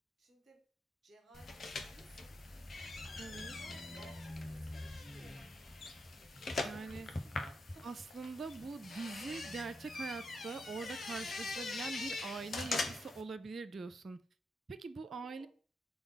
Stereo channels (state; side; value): normal; both; correlation 0.82